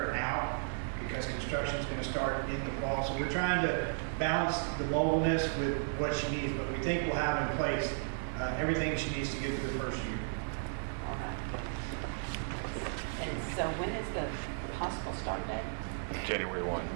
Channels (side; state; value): left; silent; 55 dB below the other